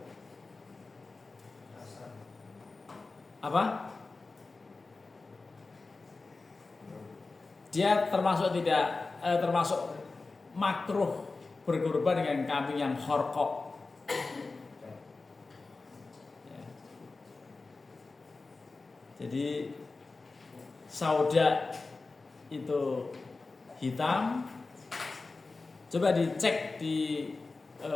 Apa? Dia termasuk termasuk makruh berkorban dengan kambing yang kharqa. Ya. Jadi sauda itu hitam. Coba dicek di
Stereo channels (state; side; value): quieter; right; 3.7 dB